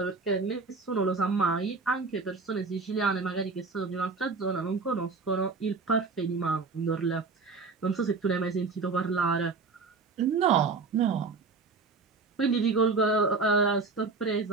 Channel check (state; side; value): quieter; left; 4.3 dB